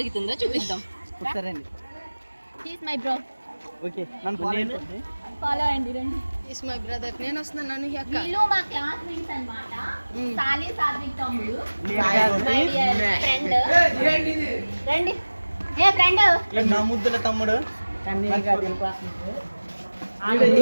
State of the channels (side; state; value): both; inverted; correlation -1.00